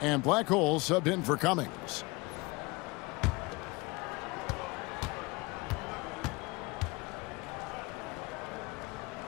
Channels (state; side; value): quieter; right; 25.0 dB